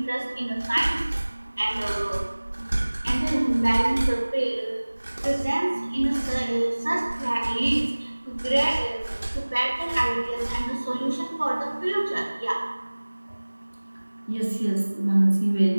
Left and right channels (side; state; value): both; inverted; correlation -1.00